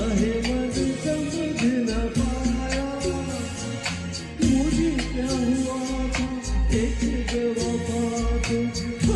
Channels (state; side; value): identical; both; correlation 1.00